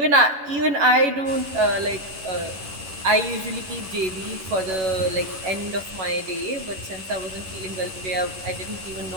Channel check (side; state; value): left; late; 11 ms